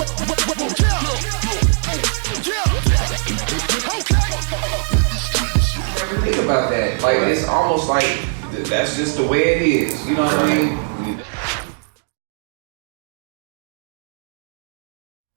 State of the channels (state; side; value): silent; left; digital silence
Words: Yeah. Yeah. Okay. Never think about that. Like, it's almost like that's just the way it is. You know what I mean?